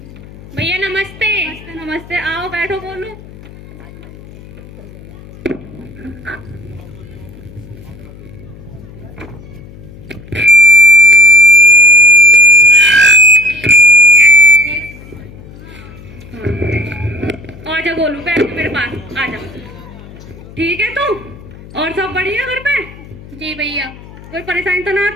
भैया नमस्ते। नमस्ते नमस्ते। आओ बैठो गोलू। आजा गोलू, बैठ मेरे पास आजा। ठीक है तू? और सब बढ़िया घर पे? जी भैया। कोई परेशानी तो ना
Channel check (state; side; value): noise; left; hum, 19 dB below the sound